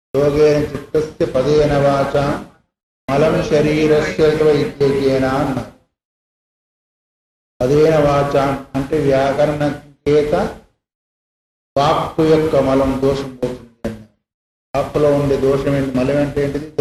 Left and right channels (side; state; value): both; identical; correlation 1.00